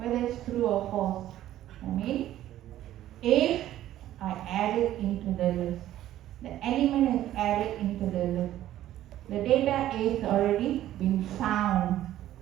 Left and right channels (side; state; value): left; quieter; 13.2 dB